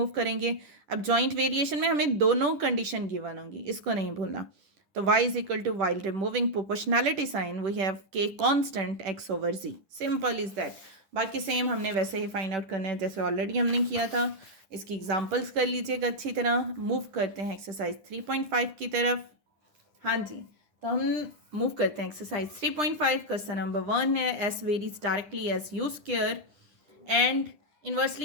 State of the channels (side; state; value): left; late; 10 ms